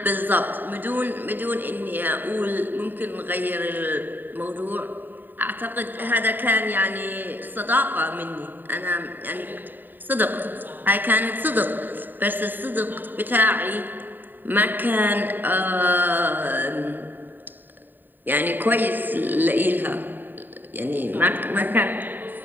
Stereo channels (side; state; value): left; late; 0.091 ms